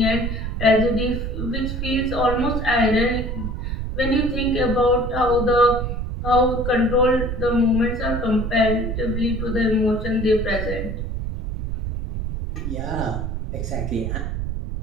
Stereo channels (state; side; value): noise; right; rumble, 4 dB below the sound